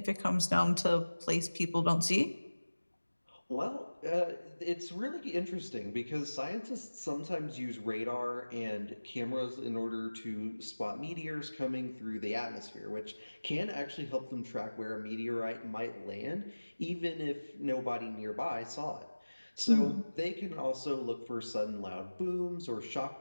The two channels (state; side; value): inverted; both; correlation -1.00